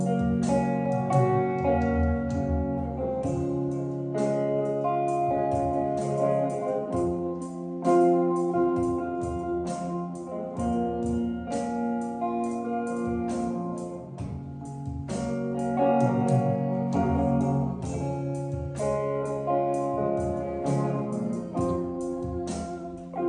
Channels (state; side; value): identical; both; correlation 1.00